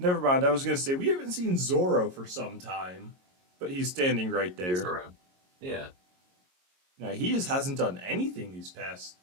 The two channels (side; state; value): left; late; 22 ms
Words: mind. I was gonna say we haven't seen Zoro for some time, but he's standing right he's there. around. Yeah. Now he just hasn't done anything these past